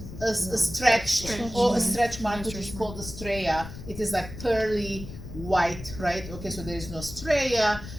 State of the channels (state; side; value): noise; left; rumble, 12 dB below the sound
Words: A stretch or a stretch mark, which is called the stria. It is like pearly white, right? Okay, so there is no stria.